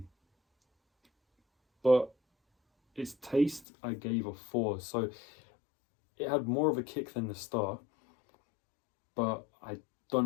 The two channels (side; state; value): right; drops out; at 3.7 s